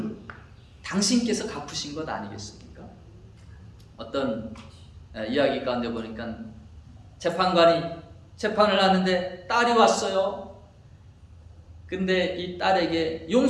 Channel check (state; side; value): identical; both; correlation 1.00